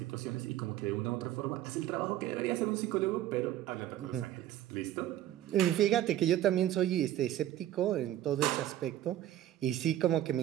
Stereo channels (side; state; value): left; quieter; 12.7 dB